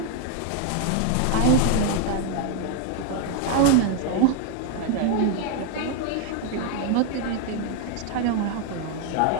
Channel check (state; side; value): different; both; correlation 0.00